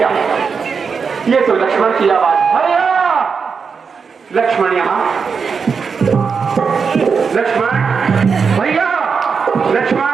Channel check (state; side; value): quieter; left; 5.7 dB